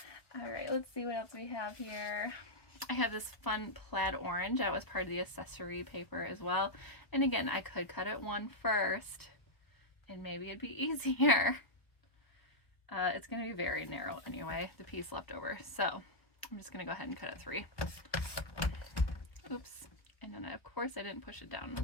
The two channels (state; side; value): late; right; 1.0 ms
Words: right, let's see what else we have here. I have this fun plaid orange. That was part of the accessory paper as well. And again, I could cut it 1 first, and maybe it'd be easier. It's going to be very narrow anyway, the piece left over. So I'm just going to go ahead and cut it 3. Oops. And then, of course, I didn't push it down.